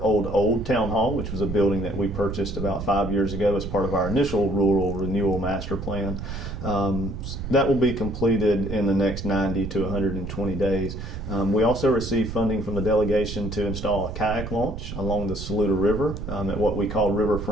old town hall, which was a building that we purchased about 5 years ago as part of our initial rural renewal master plan. That will be completed in the next 90 to 120 days. We also received funding from the delegation to install a kayak launch along the Saluda River at what we call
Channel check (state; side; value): noise; right; rumble, 8 dB below the sound